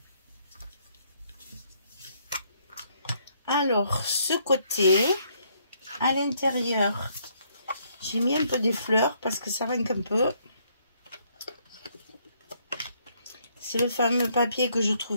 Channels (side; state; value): both; inverted; correlation -0.70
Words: Alors, ce côté, à l'intérieur, j'ai mis un peu des fleurs parce que ça manque un peu. C'est le fameux papier que je